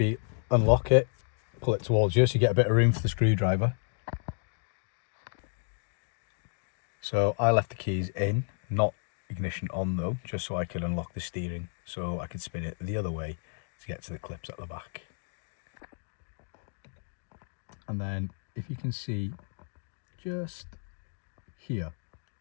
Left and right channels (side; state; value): right; silent; digital silence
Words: unlock it, pull it towards you so you get a bit of room for the screwdriver. So I left the keys in, not ignition on though, just so I could unlock the steering, so I could spin it the other way to get to the clips at the back. And then if you can see just here,